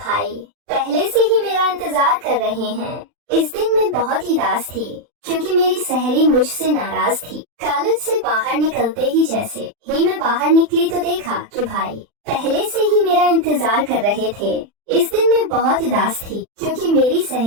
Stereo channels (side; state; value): left; late; 40 ms